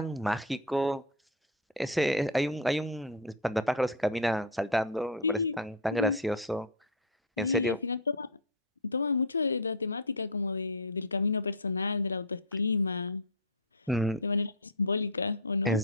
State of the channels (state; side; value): normal; both; correlation 0.04